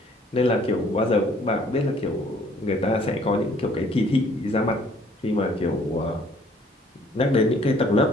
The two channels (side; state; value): both; normal; correlation 0.59